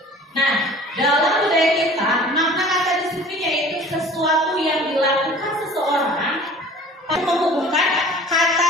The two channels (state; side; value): normal; both; correlation 0.46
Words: Nah, dalam budaya